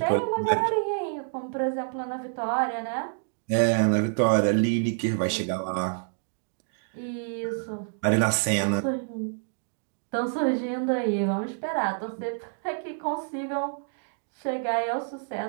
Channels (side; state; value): left; silent; digital silence